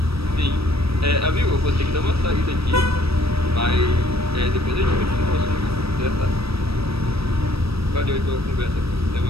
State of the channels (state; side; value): late; left; 0.77 ms